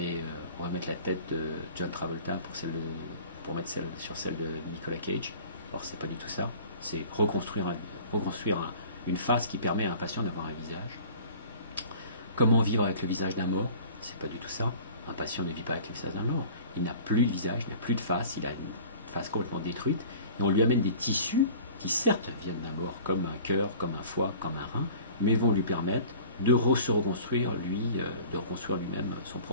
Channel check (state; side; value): inverted; both; correlation -0.45